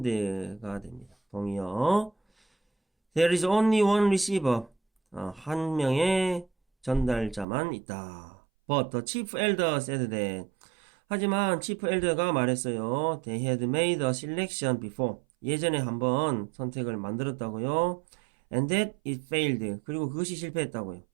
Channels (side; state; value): left; drops out; at 7.5 s